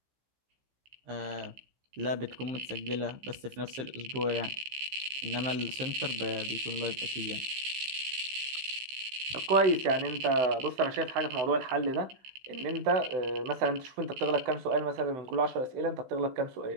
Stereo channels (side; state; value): left; late; 15 ms